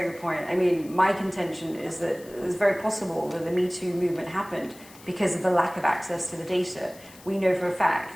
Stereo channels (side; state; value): left; noise; hiss, 22 dB below the sound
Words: good point. I mean, my contention is that it's very possible that the Me Too movement happened because of the lack of access to the data. We know for a